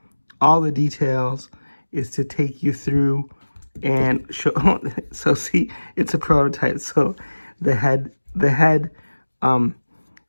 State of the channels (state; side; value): inverted; both; correlation -1.00